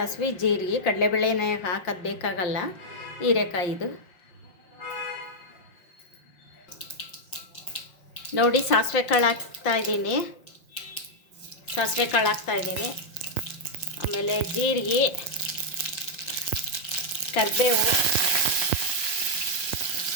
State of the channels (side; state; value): right; late; 5.7 ms